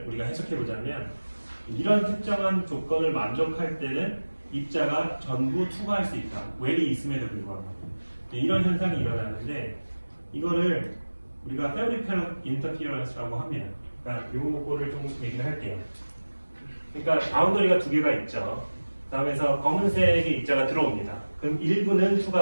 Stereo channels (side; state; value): both; inverted; correlation -1.00